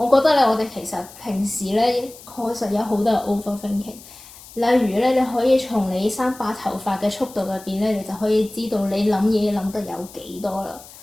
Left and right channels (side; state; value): left; noise; hiss, 19 dB below the sound